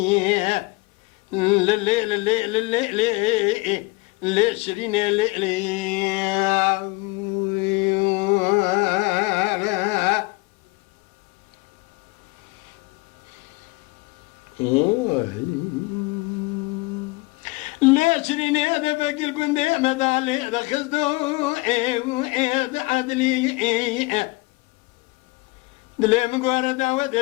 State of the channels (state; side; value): quieter; right; 24.1 dB